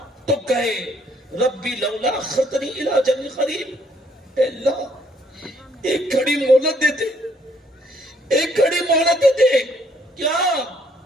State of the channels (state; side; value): normal; both; correlation 0.67